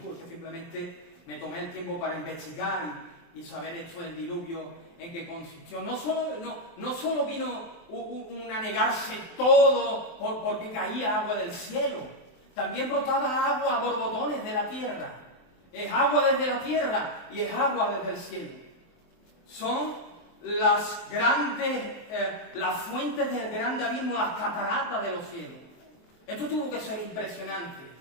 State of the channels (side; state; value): right; late; 23 ms